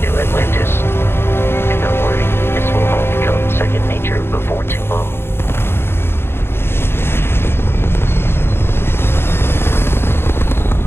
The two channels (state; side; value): late; right; 0.11 ms